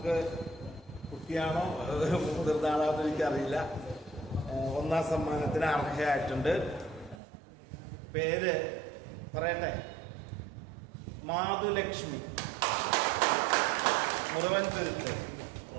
കുട്ടിയാണോ മുതിർന്നാണോ എന്ന് എനിക്കറിയില്ല, 1ാം സമ്മാനത്തിന് അർഹയായിട്ടുണ്ട്. പേര് പറയട്ടെ, മാധുലക്ഷ്മി, മുറുവൻ തുരുത്ത്.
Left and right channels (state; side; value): drops out; left; at 7.2 s